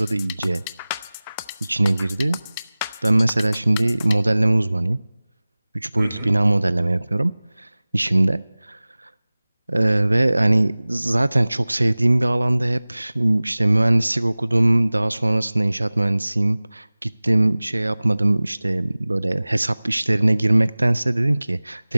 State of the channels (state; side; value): inverted; both; correlation -0.99